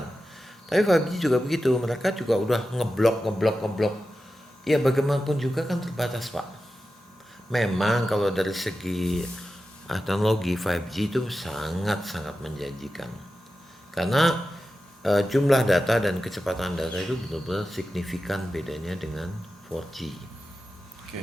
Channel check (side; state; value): both; normal; correlation 0.92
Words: Tapi 5G juga begitu, mereka juga udah ngeblok. Ya bagaimanapun juga kan terbatas Pak. Memang kalau dari segi teknologi 5G itu sangat menjanjikan. Karena jumlah data dan kecepatan data itu benar-benar signifikan bedanya dengan 4G.